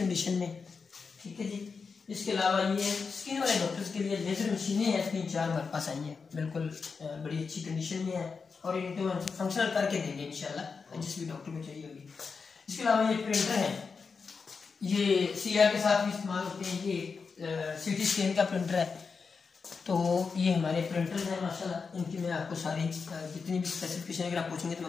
में, ठीक है जी। इसके अलावा ये स्किन वाले डॉक्टर्स के लिए लेजर मशीनें हैं, 3-4 हमारे पास आई हैं, बिल्कुल बड़ी अच्छी कंडीशन में है और इनको हम फंक्शनल करके देंगे इंशाल्लाह, जिस भी डॉक्टर को चाहिए होगी। इसके अलावा ये प्रिंटर है, ये CR के साथ भी इस्तेमाल होते हैं। ये CT स्कैन का प्रिंटर है, तो ये हमारे प्रिंटर्स हैं माशाल्लाह। इनकी मैं आपको सारी जितनी भी स्पेसिफिकेशन अगर आप पूछेंगे तो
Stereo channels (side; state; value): right; quieter; 5.1 dB